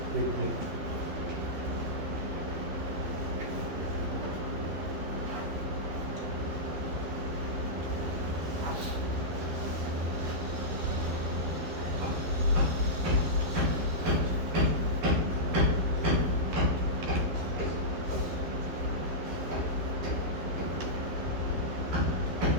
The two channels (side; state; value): left; late; 12 ms